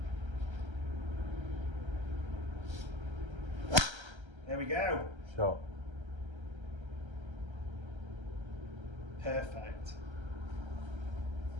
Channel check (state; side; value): late; left; 1.3 ms